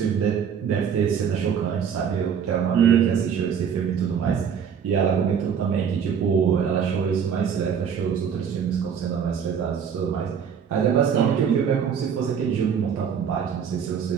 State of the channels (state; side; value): quieter; left; 7.5 dB